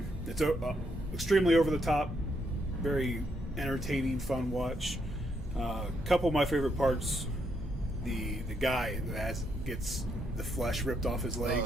extremely over the top, very entertaining, fun watch. Couple of my favorite parts: the guy that gets the flesh ripped off his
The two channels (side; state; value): right; noise; hum, 14 dB below the sound